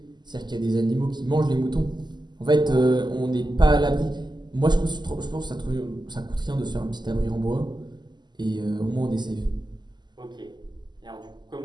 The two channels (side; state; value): left; late; 0.21 ms